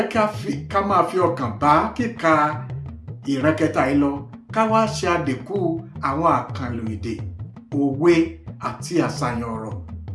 ká máa fi ọkàn bá kíka ìran kẹta yìí lọ, ká wá ṣe àdínkù àwọn àkànlò èdè, òwe àti àṣàyàn ọ̀rọ̀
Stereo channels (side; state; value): both; identical; correlation 1.00